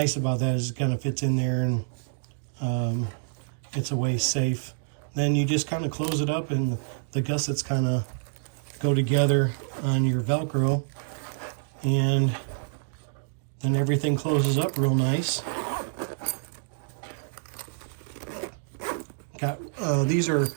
about that is it kind of fits in there, and it's a way safe. Then you just kind of close it up, and the gussets kind of go together on your Velcro, and then everything closes up real nice. These are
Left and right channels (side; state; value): left; silent; digital silence